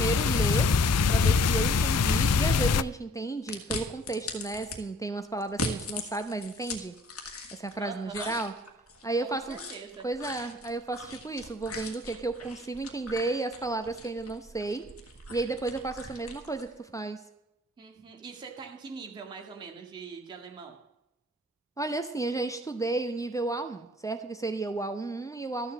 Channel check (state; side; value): normal; both; correlation 0.56